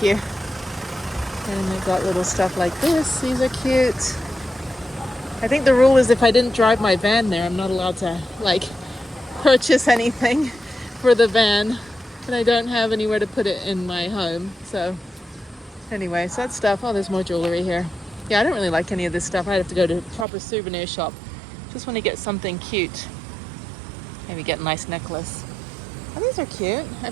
you. And they've got little stuff like this. These are cute. I think the rule is if I didn't drive my van there, I'm not allowed to like purchase anything for the van. And I don't have anywhere to put it in my home. So anyway, so that stuff. Oh, there's more jewelry here. Yeah, I don't really like any of this stuff. I'd have to go to a proper souvenir shop. Just want to get something cute. Maybe get a nice necklace. Oh, these are cute.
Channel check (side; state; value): left; drops out; at 20.2 s